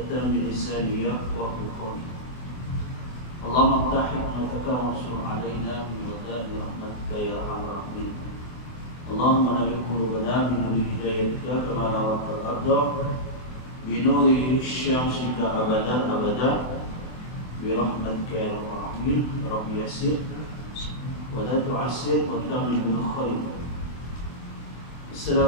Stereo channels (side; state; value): right; late; 24 ms